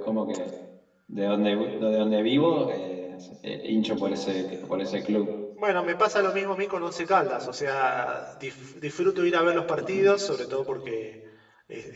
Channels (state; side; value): identical; both; correlation 1.00